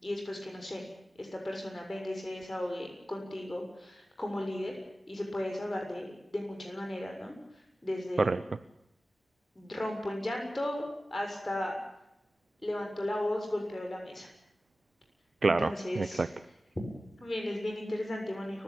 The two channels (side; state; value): both; normal; correlation 0.95